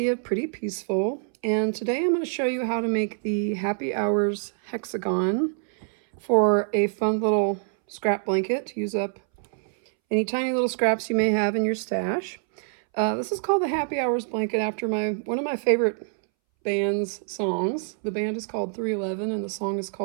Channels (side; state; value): left; silent; 61 dB below the other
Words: of Pretty Peaceful, and today I'm going to show you how to make the Happy Hours Hexagon for a fun little scrap blanket to use up any tiny little scraps you may have in your stash. This is called the Happy Hours blanket after one of my favorite band's songs. The band is called 311 and the song is